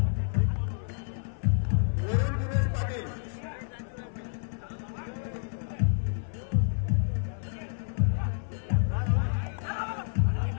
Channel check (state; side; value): silent; right; 56 dB below the other